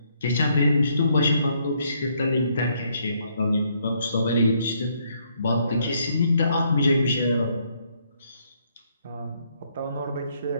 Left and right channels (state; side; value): inverted; both; correlation -0.71